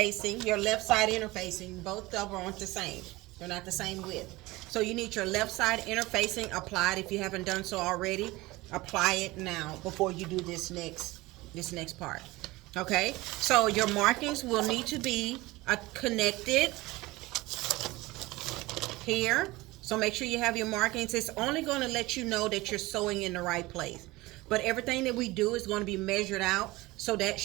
your left side interfacing. Both of them aren't the same. They're not the same width. So you need your left side interfacing applied. If you haven't done so already, apply it now before you do this next part. Okay, so your markings will need to be connected here. So make sure you have your markings. It's only going to let you know that you're sewing in the right place. But everything that we do is going to be measured out, so that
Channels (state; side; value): quieter; left; 20.5 dB